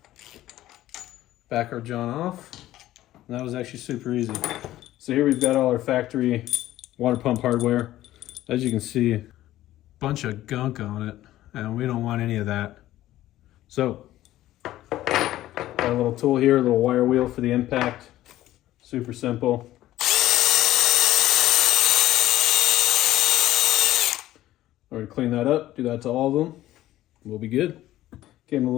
Back our John off. And that was actually super easy. So here we've got all our factory water pump hardware. As you can see, bunch of gunk on it, and we don't want any of that. So, got a little tool here, a little wire wheel for the impact. Super simple. We're gonna clean that up, do that to all of them. We'll be good. Gave them a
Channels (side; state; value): right; quieter; 14.6 dB